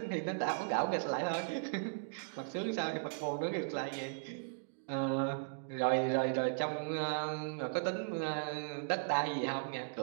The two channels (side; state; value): left; silent; digital silence